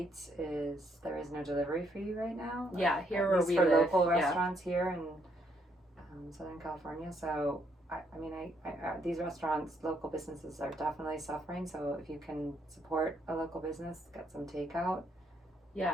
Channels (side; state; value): both; normal; correlation 0.72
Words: there is no delivery fee right now. Yeah, here where we for live. Local restaurants here in Southern California. So I these restaurants, local businesses are definitely suffering. So if you can support a local business, get some takeout.